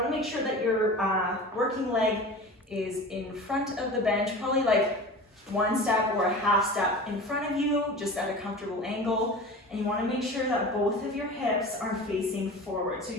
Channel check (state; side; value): normal; both; correlation 0.35